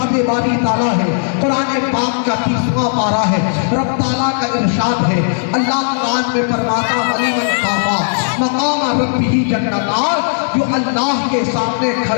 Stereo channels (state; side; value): silent; right; digital silence